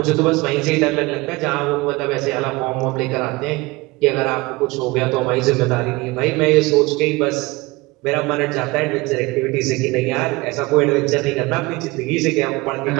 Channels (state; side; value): quieter; left; 22.6 dB